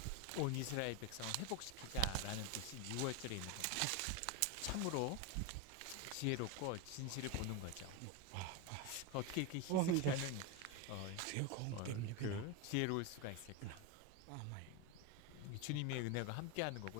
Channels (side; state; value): both; different; correlation 0.03